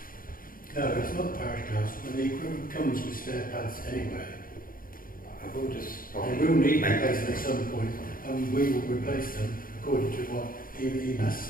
No, it's not the parish council, and the equipment comes with stair pads anyway. I will just They will need replacing at some point, and we will replace them according to what EMAS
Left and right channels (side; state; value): right; late; 0.41 ms